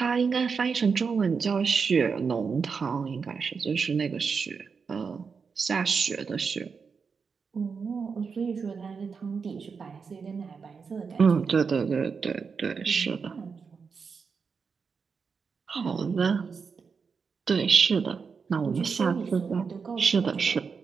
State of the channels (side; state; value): left; quieter; 5.5 dB